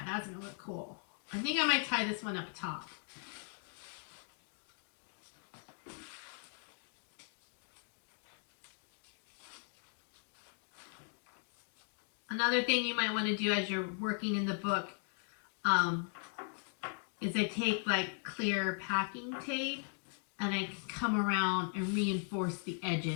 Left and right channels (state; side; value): silent; right; 52 dB below the other